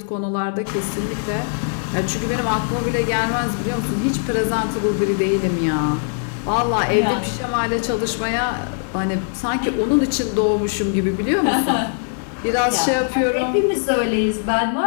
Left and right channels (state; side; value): silent; right; digital silence